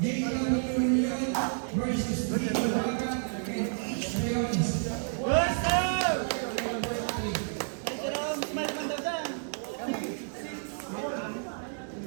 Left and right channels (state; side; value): silent; left; 57 dB below the other